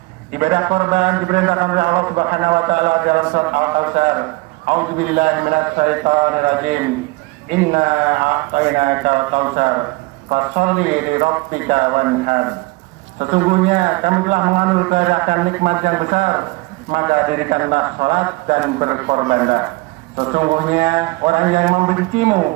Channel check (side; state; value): left; quieter; 23.8 dB